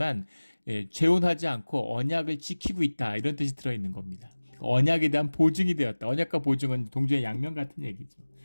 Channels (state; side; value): inverted; both; correlation -1.00